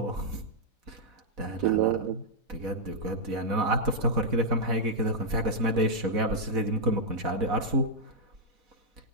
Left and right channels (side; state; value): left; late; 4.1 ms